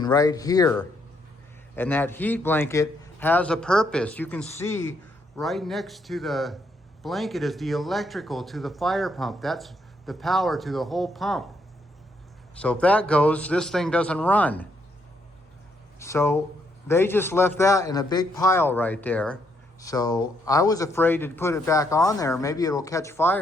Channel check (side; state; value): both; normal; correlation 0.74